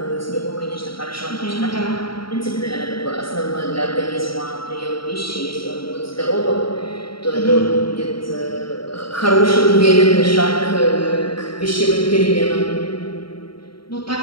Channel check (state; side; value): late; right; 0.74 ms